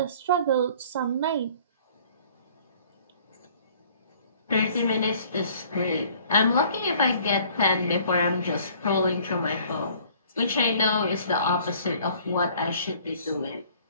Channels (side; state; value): both; inverted; correlation -0.55